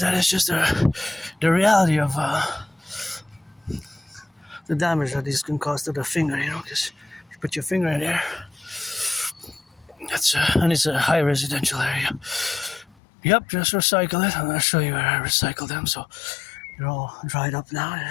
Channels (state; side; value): drops out; right; at 12.9 s